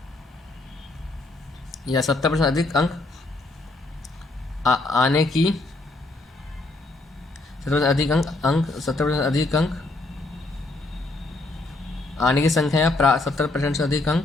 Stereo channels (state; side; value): quieter; right; 3.0 dB